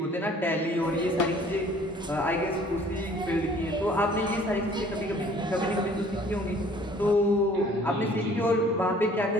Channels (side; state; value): both; normal; correlation 0.55